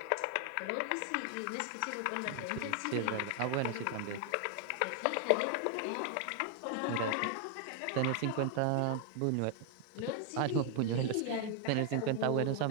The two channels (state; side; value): different; both; correlation 0.00